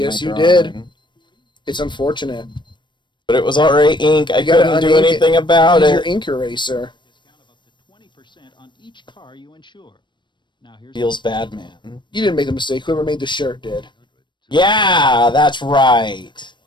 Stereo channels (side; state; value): right; late; 0.22 ms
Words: Yes, you drawing. did. It's unfortunate. But it was already ink. I You gotta couldn't do unink it. anything about Use your it. ink eraser. Feels bad, man. You didn't make the mistake. Whoever made the shirt did. Yeah, that's right.